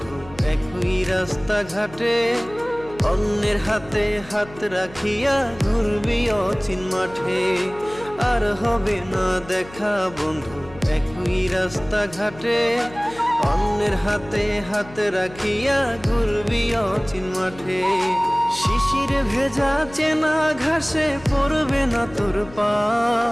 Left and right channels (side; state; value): left; noise; hum, 19 dB below the sound